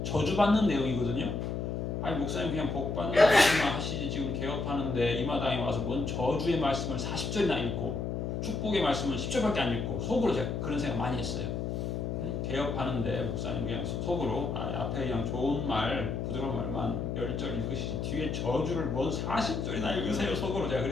저주받는 내용이거든요. 아니 목사님 그냥 복 받는 말씀만 하시지 지금 개업하는데 이 마당에 와서 뭔 저주의 말씀을 40절이나 읽고 축복의 말씀은 10절밖에 안 읽고 속으로 제가 그런 생각 많이 했어요. 개업하는데 목사님 그냥 속으로 앞에 그냥 좋은 말 부드러운 말만 10절 읽으시지 뒤에 저주를 뭔 40절이나 읽으세요 속으로 제가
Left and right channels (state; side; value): noise; left; hum, 2 dB below the sound